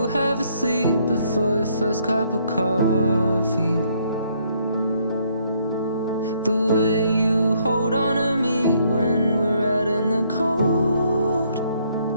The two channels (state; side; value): inverted; both; correlation -0.69